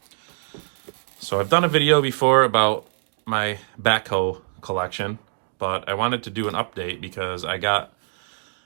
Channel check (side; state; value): left; silent; digital silence